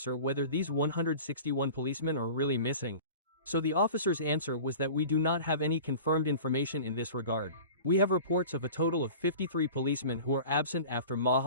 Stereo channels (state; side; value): inverted; both; correlation -0.39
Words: whether these 161 policemen are really missing, so the officer's answer was that we do not have any confirmed information in this regard. We have reports of a total of 53 policemen who are absent after